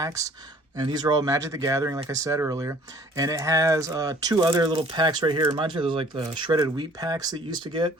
And these are all Magic the Gathering, like I said earlier. And it has 2 other little packs right here. Reminds me of those like the shredded wheat packs that you used to get.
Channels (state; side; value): normal; both; correlation 0.53